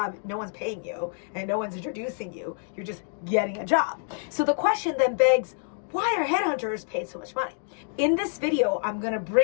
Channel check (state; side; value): silent; right; 58 dB below the other